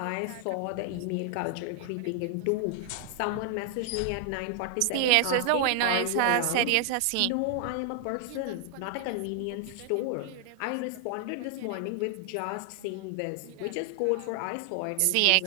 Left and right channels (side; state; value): both; different; correlation 0.00